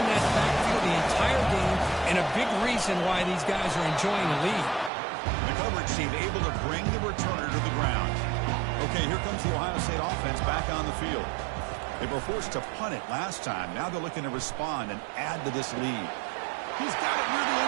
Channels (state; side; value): drops out; left; at 4.9 s